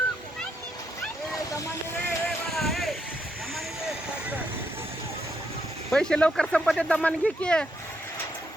पैसे लवकर संपत आहेत, दमाने घे की.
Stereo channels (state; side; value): normal; both; correlation 0.78